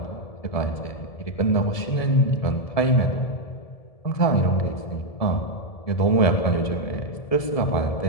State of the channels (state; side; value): late; right; 1.7 ms